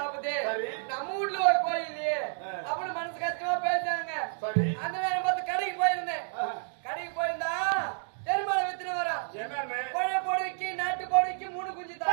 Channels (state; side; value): silent; left; digital silence